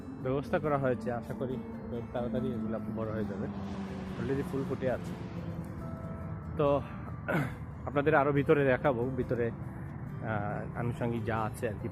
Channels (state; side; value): identical; both; correlation 1.00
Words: ব্যবস্থা করা হয়েছে। আশা করি খুব তাড়াতাড়ি এগুলো বড় হয়ে যাবে। অলরেডি ফুল ফুটে আছে। তো আপনাদের আরও ভিতরে দেখাবো, ভিতরে আনুষঙ্গিক যা আছে আর কি